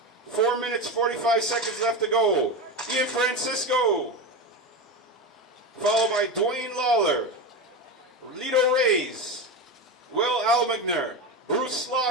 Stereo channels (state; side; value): normal; both; correlation 0.19